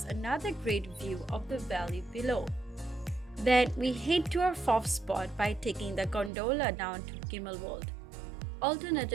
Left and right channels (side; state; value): left; drops out; at 6.3 s